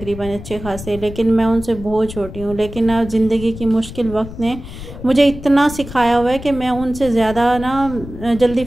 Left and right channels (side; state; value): left; noise; rumble, 12 dB below the sound